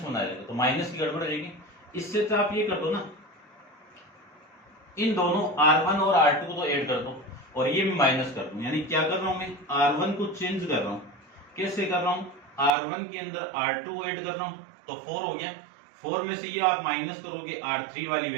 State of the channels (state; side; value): drops out; left; at 12.7 s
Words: आ जाएगा, तो माइनस की गड़बड़ रहेगी। इससे तो आप ये कर दो ना, इन दोनों R1 और R2 को तो ऐड कर दो और ये भी माइनस कर दूं, यानी क्या कर रहा हूं मैं R1 को चेंज कर रहा हूं। कैसे कर रहा हूं, R1 के अंदर R2 ऐड कर रहा हूं तो 4 हो गया, 4 में से ये आप माइनस करोगे R3 वाली